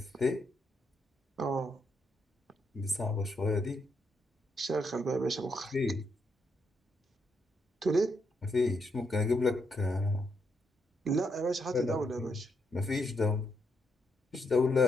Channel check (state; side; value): normal; both; correlation 0.79